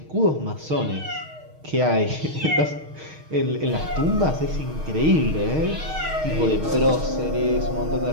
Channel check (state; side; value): late; left; 6.4 ms